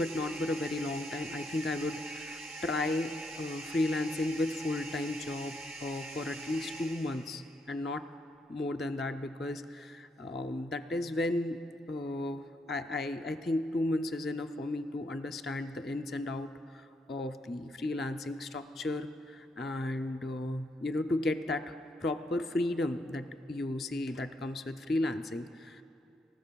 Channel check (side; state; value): both; normal; correlation 0.77